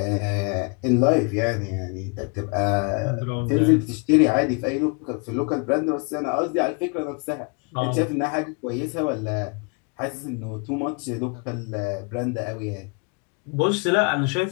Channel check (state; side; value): quieter; right; 32.5 dB